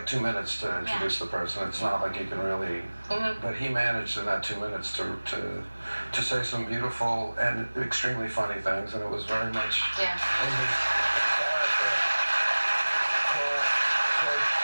2 minutes to introduce the person. It's not like you can really. But he managed in that 2 minutes to say some beautiful and extremely funny things, and it was very much in his character.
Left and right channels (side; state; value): both; inverted; correlation -1.00